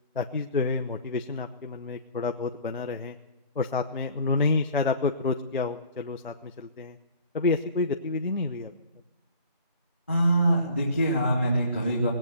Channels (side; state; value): both; inverted; correlation -0.48